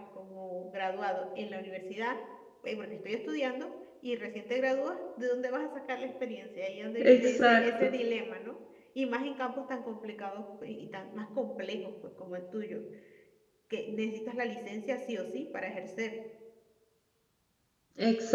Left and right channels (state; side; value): identical; both; correlation 1.00